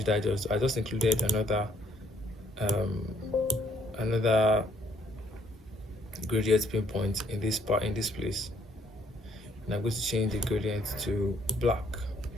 I just included another gradient pinpoint in this place, and I'm going to change the gradient to black.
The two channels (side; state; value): both; normal; correlation 0.66